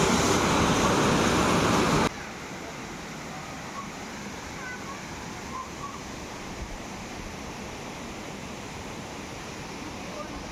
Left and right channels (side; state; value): both; identical; correlation 1.00